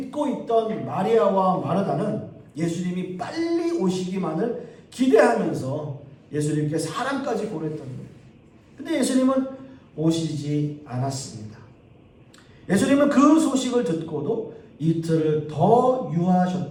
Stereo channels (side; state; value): both; identical; correlation 1.00